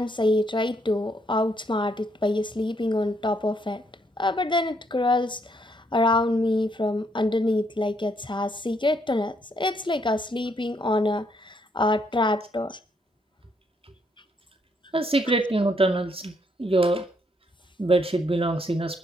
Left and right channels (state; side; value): normal; both; correlation 0.72